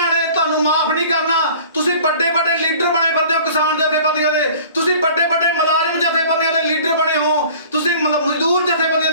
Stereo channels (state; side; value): inverted; both; correlation -0.46